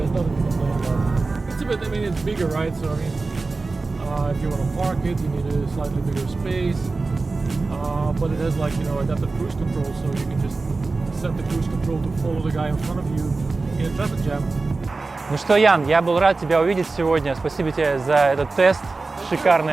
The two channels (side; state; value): left; quieter; 3.7 dB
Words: nothing to complain about. It's a bit, it's bigger, right? So if you want to park it, you need a slightly bigger space. But it has adaptive cruise control, so you can just set the cruise control to follow the guy in front of you in a traffic jam. Ну что, Ян, я был рад тебя увидеть сегодня. Спасибо тебе за этот тест